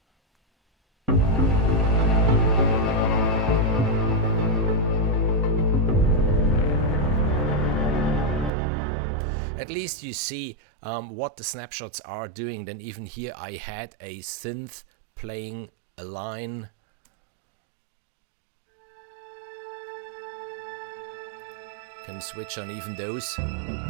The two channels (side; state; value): left; drops out; at 8.5 s